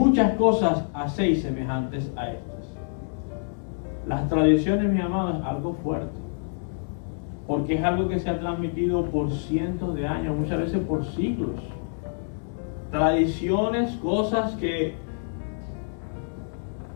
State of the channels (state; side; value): silent; right; digital silence